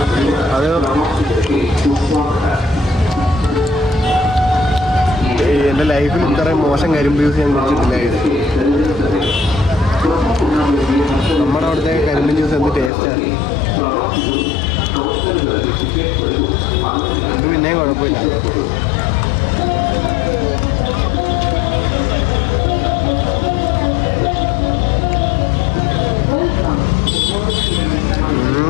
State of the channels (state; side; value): drops out; right; at 12.9 s